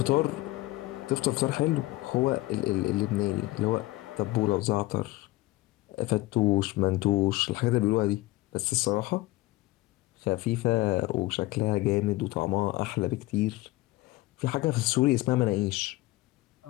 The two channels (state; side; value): quieter; right; 19.2 dB